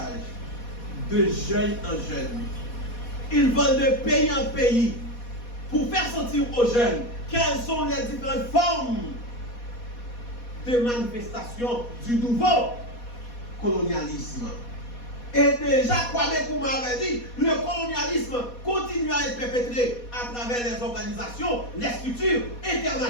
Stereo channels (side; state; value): right; late; 4.2 ms